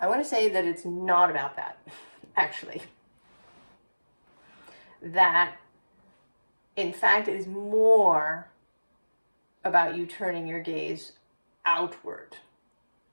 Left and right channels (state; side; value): inverted; both; correlation -1.00